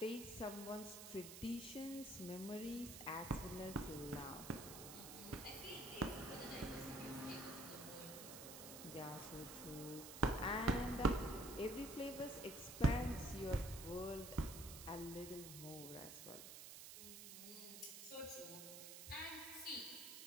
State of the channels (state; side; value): noise; right; hiss, 10 dB below the sound